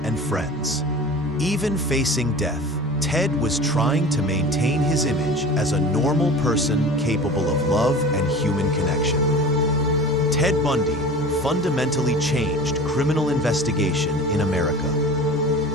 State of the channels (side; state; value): both; normal; correlation 0.38